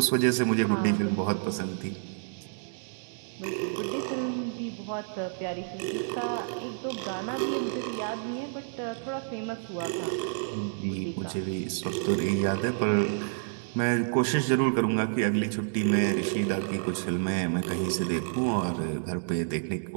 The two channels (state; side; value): silent; left; digital silence